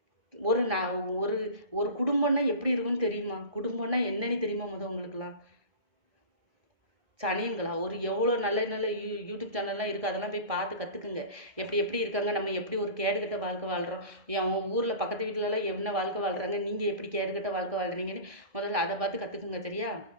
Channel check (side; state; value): left; late; 1.7 ms